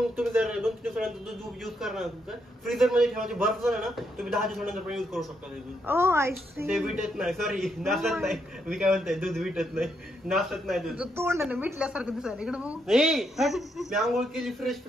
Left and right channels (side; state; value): both; normal; correlation 0.78